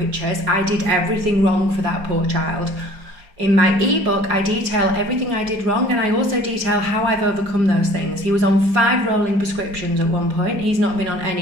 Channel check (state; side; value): late; left; 4.9 ms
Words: I did everything wrong for that poor child. In my ebook, I detail everything I did wrong, and I also detail how I've overcome those things. He was on 5 rolling prescriptions at one point. He's not been on